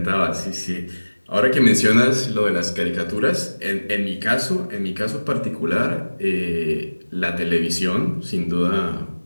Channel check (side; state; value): both; inverted; correlation -1.00